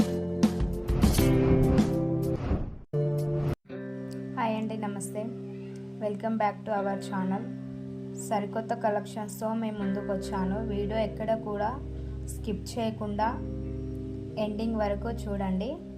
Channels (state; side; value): identical; both; correlation 1.00